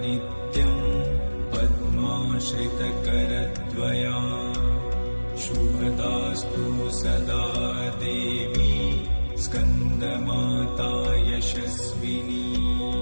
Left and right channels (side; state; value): both; inverted; correlation -1.00